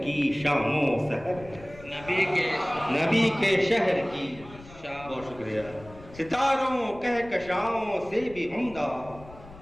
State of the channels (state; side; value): noise; left; rumble, 19 dB below the sound